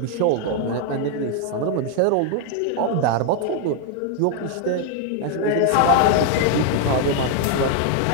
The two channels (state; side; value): different; both; correlation 0.00